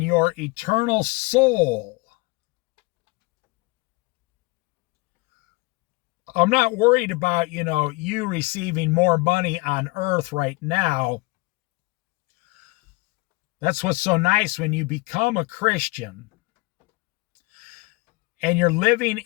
eternal soul. I'm not worried about, you receiving more money on earth right now. That's what's so nice when you become a Christian and you're living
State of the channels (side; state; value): right; quieter; 25.2 dB